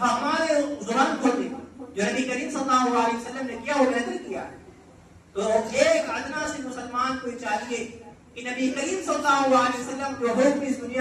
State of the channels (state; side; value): identical; both; correlation 1.00